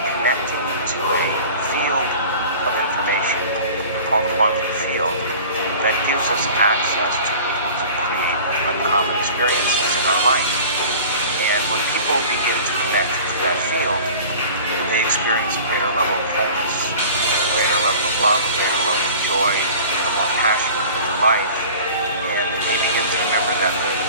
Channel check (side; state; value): both; inverted; correlation -0.42